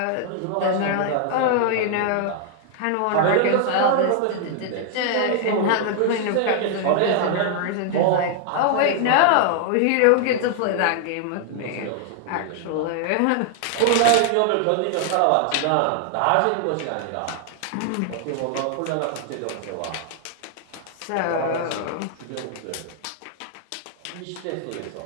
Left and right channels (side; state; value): both; different; correlation 0.00